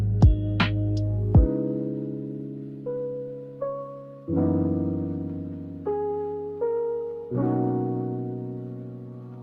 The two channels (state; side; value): identical; both; correlation 1.00